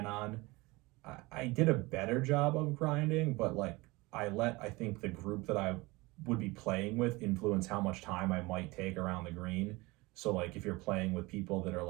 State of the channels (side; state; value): left; quieter; 22.8 dB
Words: on. I did a better job of grinding, but like I think the group that I would be playing with influence how much time I might take around the green. So like if you're playing with people that are